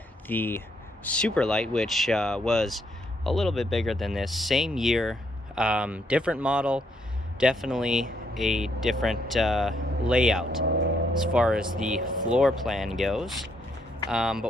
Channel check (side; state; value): both; normal; correlation 0.73